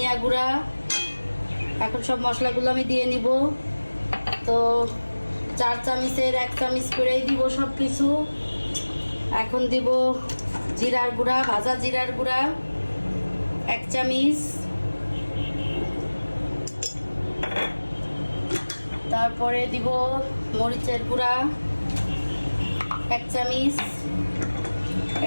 গুঁড়া, এখন সব মশলাগুলো আমি দিয়ে নিব। তো 4 চামচের 1 চামচ করেই দিব সব কিছু। এখন দিব জিরার গুঁড়া, ভাজা জিরার গুঁড়া 1 চামচ, তারপরে দিব মরিচের গুঁড়া 1 চামচ।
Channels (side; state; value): both; inverted; correlation -1.00